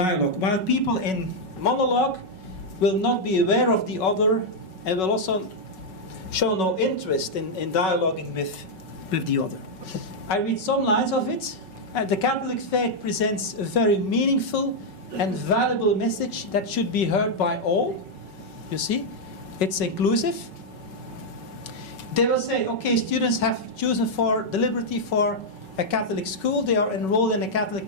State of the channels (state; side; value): late; right; 5.3 ms